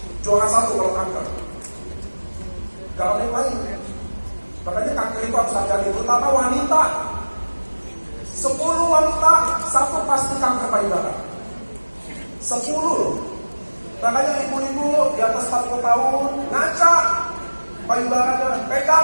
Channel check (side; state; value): both; inverted; correlation -1.00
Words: juara 1 kalau kanker. Gak ada yang lain. Makanya kanker itu harus hati-hati, terutama wanita. 10 wanita, 1 pasti kanker payudara. 10 loh. Makanya ibu-ibu di atas 40 tahun ngaca payudaranya,